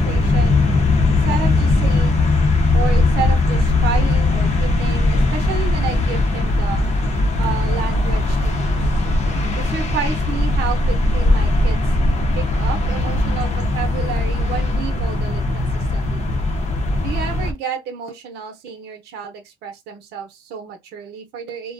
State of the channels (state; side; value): normal; both; correlation 0.76